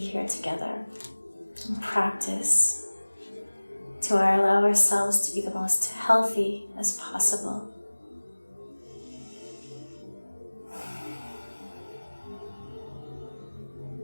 together and practice to allow ourselves to be the most healthy as possible.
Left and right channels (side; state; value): both; inverted; correlation -1.00